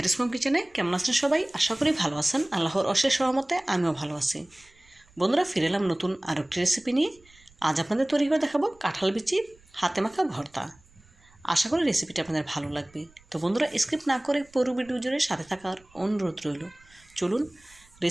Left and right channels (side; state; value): right; noise; rumble, 29 dB below the sound